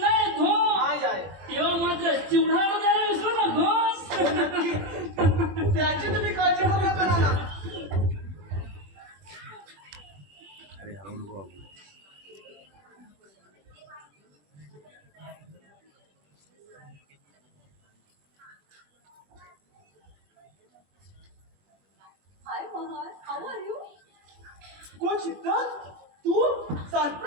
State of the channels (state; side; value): late; left; 21 ms